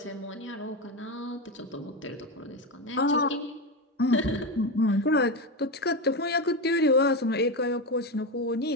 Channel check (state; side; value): normal; both; correlation 0.15